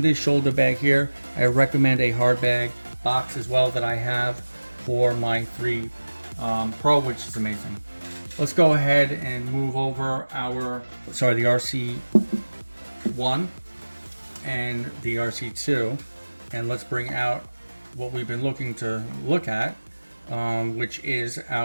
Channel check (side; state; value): both; inverted; correlation -1.00